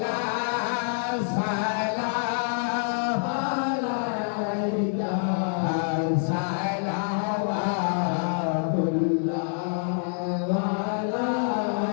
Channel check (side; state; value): right; silent; 61 dB below the other